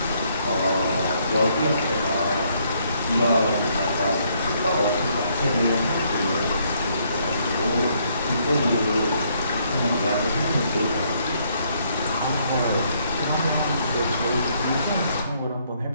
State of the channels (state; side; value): inverted; both; correlation -0.70